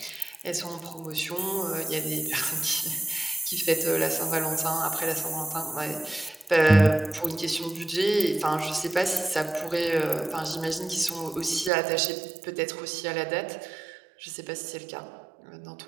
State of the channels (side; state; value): left; drops out; at 11.7 s